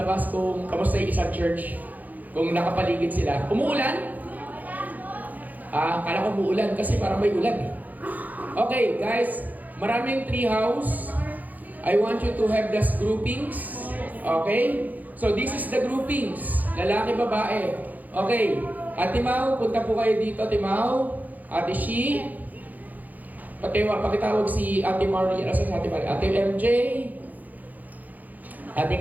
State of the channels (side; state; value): left; late; 0.081 ms